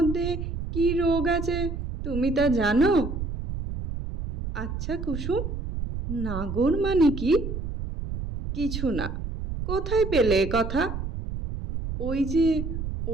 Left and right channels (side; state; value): right; noise; rumble, 5 dB below the sound